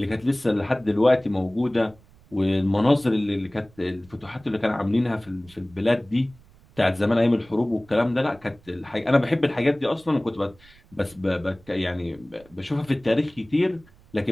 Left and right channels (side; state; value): right; noise; rumble, 26 dB below the sound